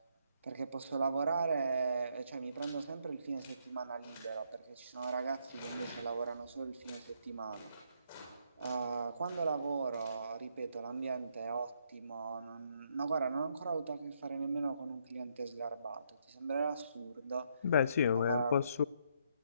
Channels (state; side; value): inverted; both; correlation -0.73